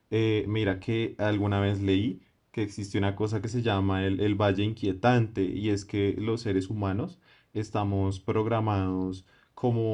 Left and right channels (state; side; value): identical; both; correlation 1.00